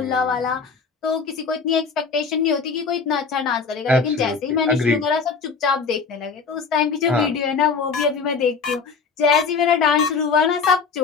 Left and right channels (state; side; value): quieter; right; 5.2 dB